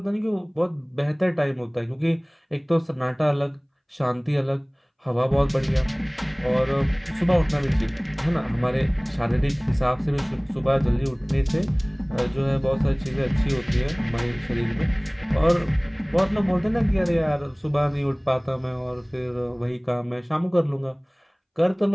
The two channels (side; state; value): both; identical; correlation 1.00